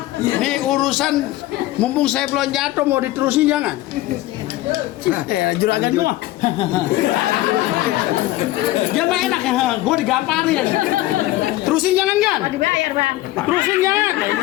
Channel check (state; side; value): quieter; right; 16.6 dB